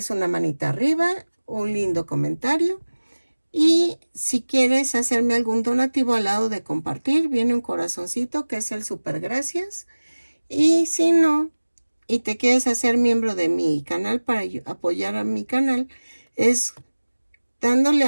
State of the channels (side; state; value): both; inverted; correlation -1.00